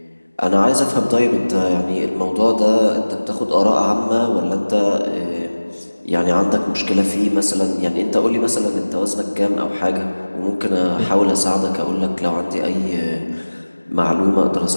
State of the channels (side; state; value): both; inverted; correlation -1.00